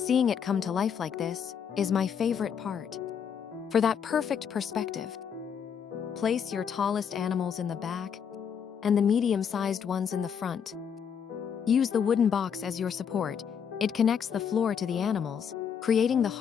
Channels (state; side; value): quieter; right; 7.5 dB